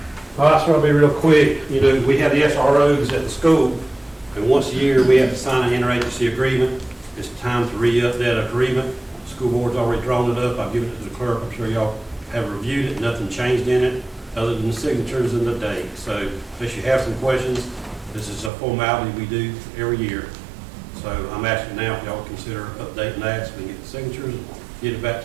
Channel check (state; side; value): drops out; left; at 18.5 s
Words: Well, that's going to be real quick. We have the SROs at the school, and once a year, we have to sign an interagency agreement. It's time to re-up that agreement. The school board's already drawn it up. I've given it to the clerk. I'm sure y'all have reviewed it. Nothing changed in it, other than the signatures and the date. So, unless you have some questions, this is a formality we do every year. So, I'm asking now if y'all consider updating that so we can get the signatures, and get it back